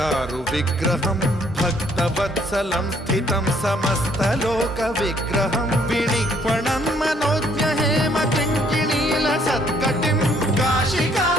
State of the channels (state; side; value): normal; both; correlation 0.65